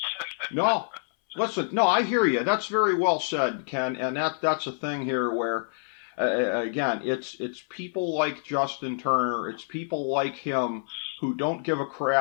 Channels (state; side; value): silent; right; 60 dB below the other